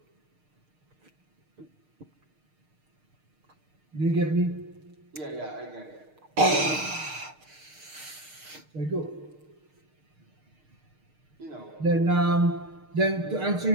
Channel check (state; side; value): late; left; 6.5 ms